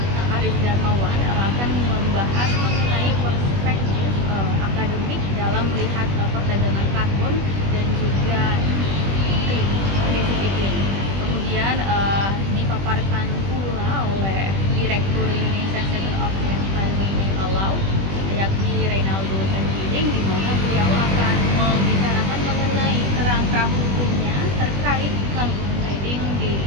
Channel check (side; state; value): left; late; 21 ms